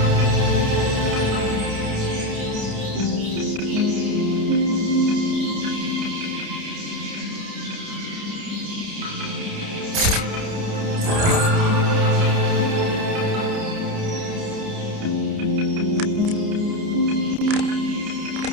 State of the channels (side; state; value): left; late; 29 ms